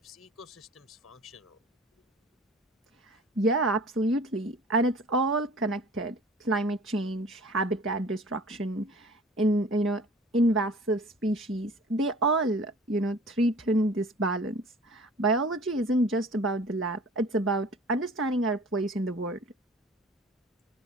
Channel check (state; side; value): normal; both; correlation 0.45